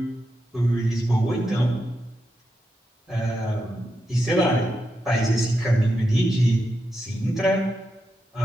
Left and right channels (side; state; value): both; normal; correlation 0.86